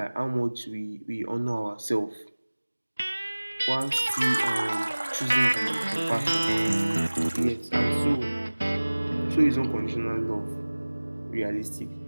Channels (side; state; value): both; inverted; correlation -1.00